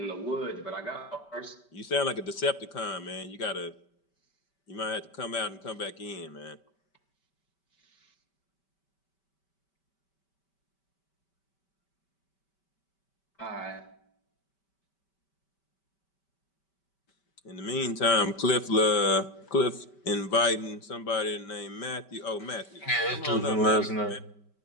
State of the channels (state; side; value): late; right; 5.2 ms